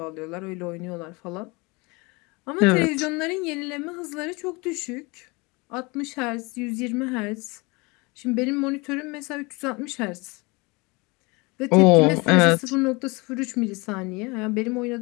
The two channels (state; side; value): quieter; right; 26.6 dB